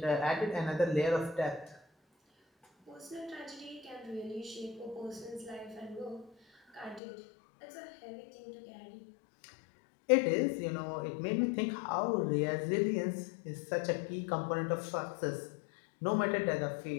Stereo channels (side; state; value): right; drops out; at 7.0 s